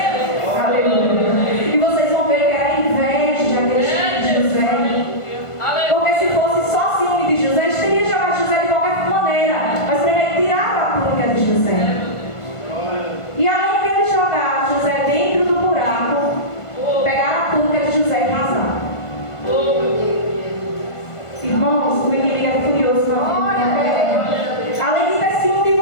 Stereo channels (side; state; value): right; late; 1.5 ms